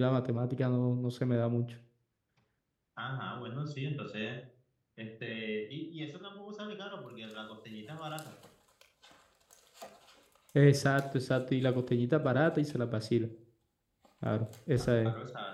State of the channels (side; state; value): both; identical; correlation 1.00